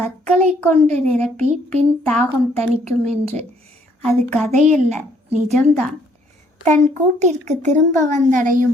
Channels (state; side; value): normal; both; correlation 0.65